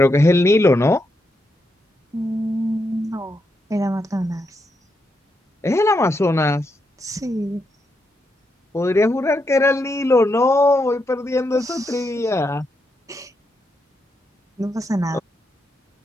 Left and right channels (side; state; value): both; normal; correlation 0.82